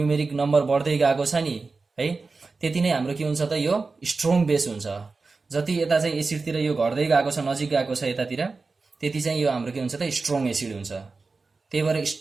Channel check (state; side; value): quieter; left; 4.1 dB